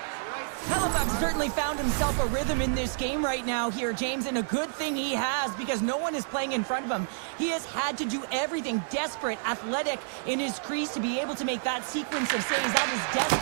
Hellbuck's certainly found himself a rhythm in this game right now here, James, and a good thing he has because no one is playing in front of him. He has had to do everything desperate, athletic in his crease to be able to make that sequence of saves. That is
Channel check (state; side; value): silent; left; 59 dB below the other